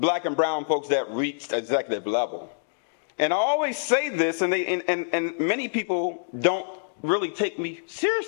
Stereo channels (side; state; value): right; silent; digital silence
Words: and brown folks that reached executive level. And I always say this, and many people don't really take me